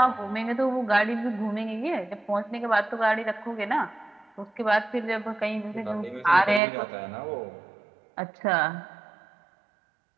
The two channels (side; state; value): left; drops out; at 6.6 s